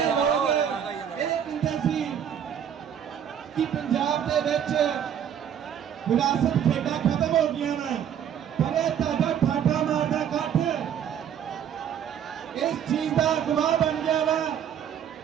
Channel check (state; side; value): quieter; left; 8.9 dB